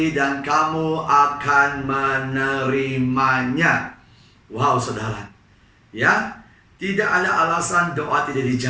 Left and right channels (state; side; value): identical; both; correlation 1.00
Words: dan kamu akan menerimanya. Wow, saudara. Ya, tidak ada alasan doa tidak